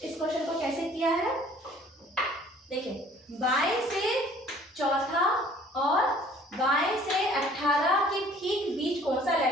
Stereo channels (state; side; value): normal; both; correlation 0.54